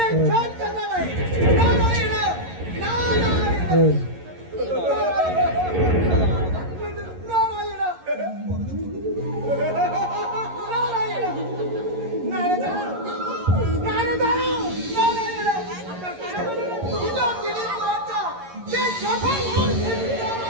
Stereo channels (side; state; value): left; late; 11 ms